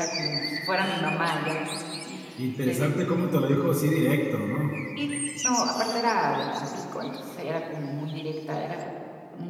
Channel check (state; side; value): identical; both; correlation 1.00